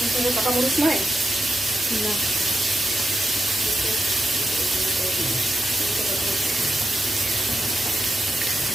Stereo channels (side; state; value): both; normal; correlation 0.87